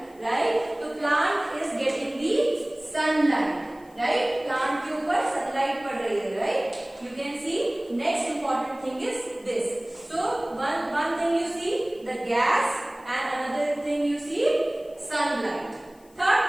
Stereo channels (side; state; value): left; noise; hiss, 29 dB below the sound